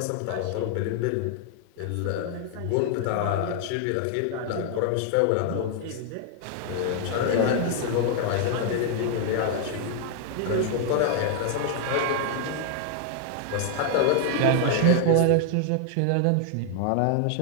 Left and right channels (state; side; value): different; both; correlation 0.00